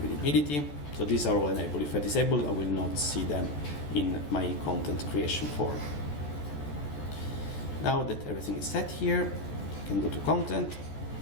readability. So these are all enabled. If I disable, I will not see them in my content creation form. Now that everything is set here, I can go to content.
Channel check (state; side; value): late; right; 14 ms